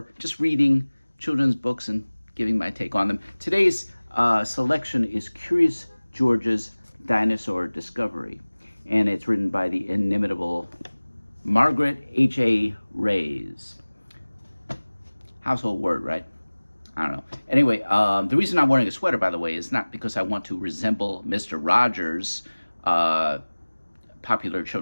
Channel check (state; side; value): inverted; both; correlation -1.00